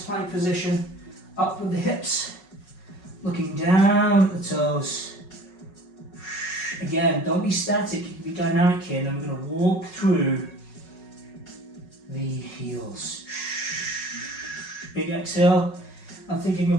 plank position, up with the hips, looking down at the toes. Again, don't be static, you can be dynamic here, and then we're going to walk through the heels. Big exhale. I'm thinking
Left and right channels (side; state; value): right; late; 5.4 ms